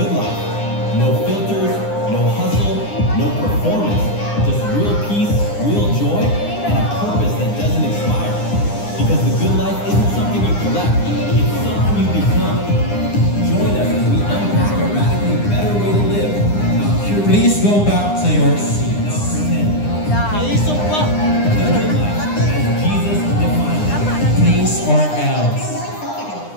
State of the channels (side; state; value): right; late; 9.9 ms